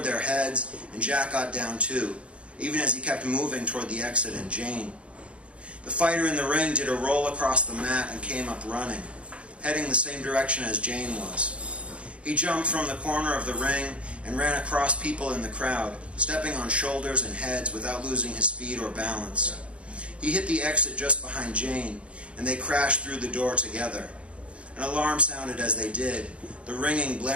their heads, and Jack got down too, even as he kept moving toward the exit and Jane. The fighter in the ring did a roll across the mat and came up running, heading the same direction as Jane was. He jumped from the corner of the ring and ran across people in the crowd, stepping on shoulders and heads without losing his speed or balance. He hit the exit just behind Jane, and they crashed through the door together. An alarm sounded as they did, the ringing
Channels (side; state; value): left; late; 0.061 ms